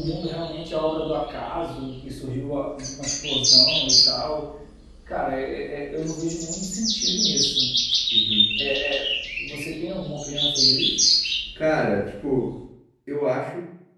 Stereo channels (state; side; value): identical; both; correlation 1.00